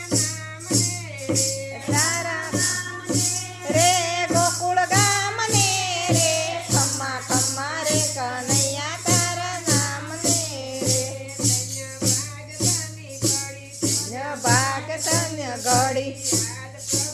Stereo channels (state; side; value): identical; both; correlation 1.00